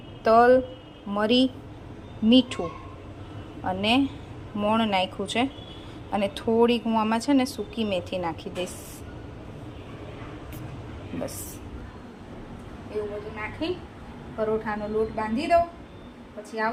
તલ, મરી, મીઠું અને મોણ નાખ્યું છે. અને થોડીક હું આમાં છે ને સૂકી મેથી નાખી દઈશ. બસ એવું બધું નાખી પરોઠાનો લોટ બાંધી દઉં. પછી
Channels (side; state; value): both; identical; correlation 1.00